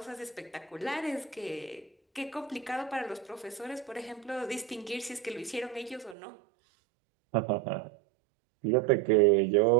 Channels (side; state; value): left; drops out; at 6.2 s